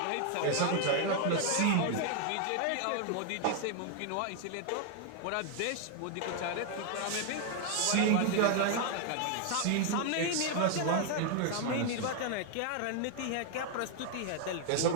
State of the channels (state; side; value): different; both; correlation 0.00